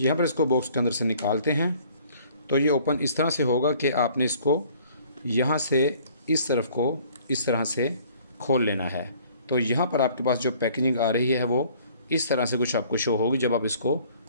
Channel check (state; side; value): inverted; both; correlation -0.55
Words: यहाँ पर इसको बॉक्स के अंदर से निकालते हैं तो ये ओपन इस तरह से होगा कि आपने इसको यहाँ से इस तरफ को इस तरह से खोल लेना है। तो यहाँ पर आपके पास जो पैकेजिंग आ रही है वो इस तरह से कुछ आपको शो होगी जब आप इसको